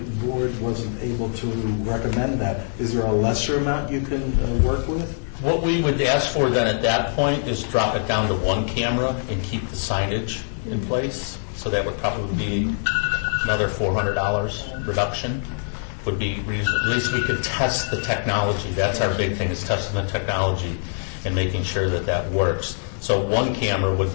board wasn't able to recommend that? Is there a lesser amount you can work with? What we would ask for then at that point is drop it down to 1 camera and keep the signage in place. So that would probably be another $400 reduction. Would be at least we could test the technology. That's our big thing, is testing the technology and making sure that works. So 1 camera would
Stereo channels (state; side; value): silent; right; digital silence